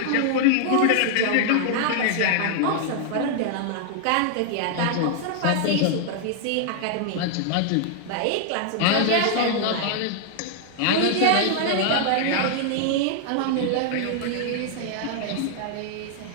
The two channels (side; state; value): both; different; correlation 0.00